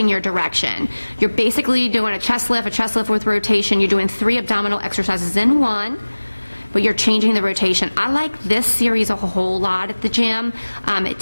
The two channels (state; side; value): inverted; both; correlation -1.00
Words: your direction. You're basically doing a chest lift with rotation. You're doing 3 abdominal exercises in one, but you're changing the rotation. I like this series a whole lot at the gym. I